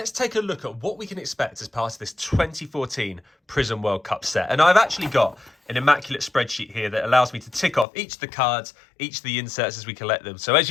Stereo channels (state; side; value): drops out; right; at 7.9 s